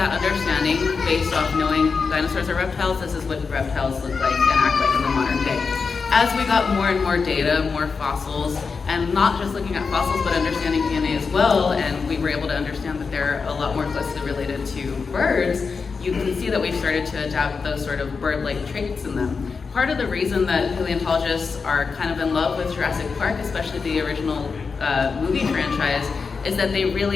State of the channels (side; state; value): right; quieter; 5.0 dB